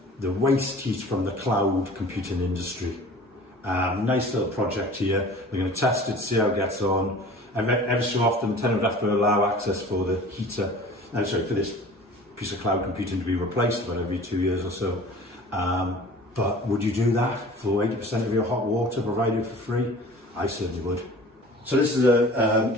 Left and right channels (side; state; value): both; normal; correlation 0.44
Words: the waste heat from the cloud computing industry. Nice little project here. We're going to test it, see how it gets on. Every so often, the tenant would have to allow access for the Heata, for this piece of cloud computing to be replaced about every 2 years or so. But would you do that for 80% of your hot water provided for free? I certainly would. So this is